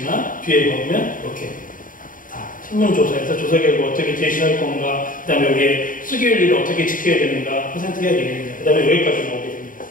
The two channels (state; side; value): late; right; 0.39 ms